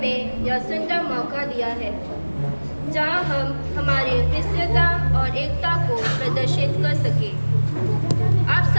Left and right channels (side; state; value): both; inverted; correlation -1.00